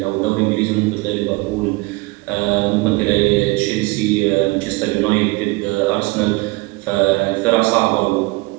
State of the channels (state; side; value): quieter; left; 24.2 dB